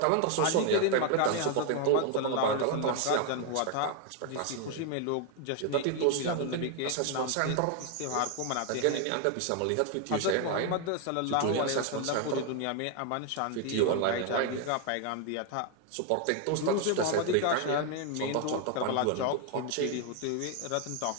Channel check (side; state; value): both; different; correlation 0.01